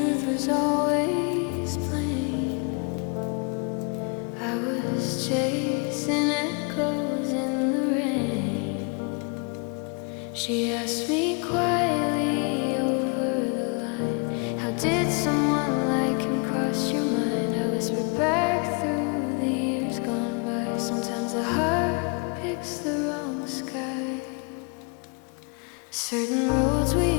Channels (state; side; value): quieter; right; 35.4 dB